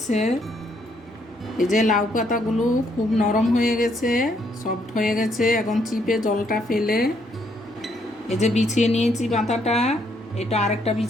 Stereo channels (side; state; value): both; normal; correlation 0.71